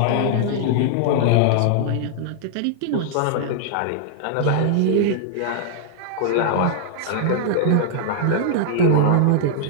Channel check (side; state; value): both; different; correlation -0.01